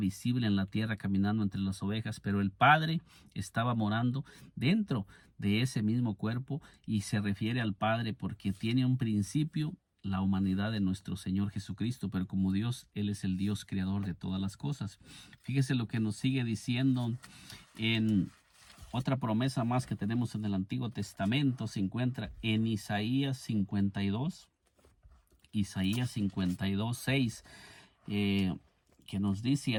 en la tierra caminando entre las ovejas, pero el Padre estaba morando dentro de ese mismo cuerpo, y se refiere al Padre porque tiene un principio la humanidad de nuestro Señor Jesucristo, pero como Dios, Él es el Dios creador de todas las cosas. Fíjese lo que nos sigue diciendo en otra promesa más que tenemos en el Antiguo Testamento. Se encuentra en Isaías 52, 6, que nos dice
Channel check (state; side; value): identical; both; correlation 1.00